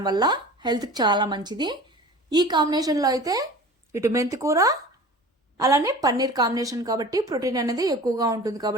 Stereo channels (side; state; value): both; normal; correlation 0.39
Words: వల్ల హెల్త్కి చాలా మంచిది. ఈ కాంబినేషన్లో అయితే ఇటు మెంతికూర అలానే పన్నీర్ కాంబినేషన్ కాబట్టి ప్రోటీన్ అనేది ఎక్కువగా ఉంటుంది.